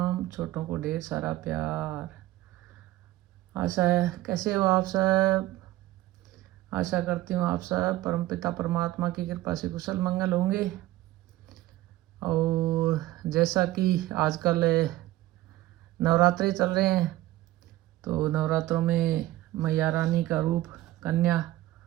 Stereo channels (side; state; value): left; quieter; 16.0 dB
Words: छोटों को ढेर सारा प्यार। आशा है कैसे हो आप सब। आशा करती हूँ आप सब परमपिता परमात्मा की कृपा से कुशल मंगल होंगे। और जैसा कि आजकल नवरात्रे चल रहे हैं, तो नवरात्रों में मैया रानी का रूप कन्या